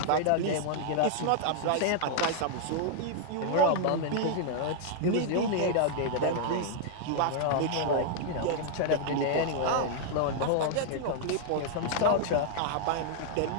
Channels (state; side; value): different; both; correlation -0.01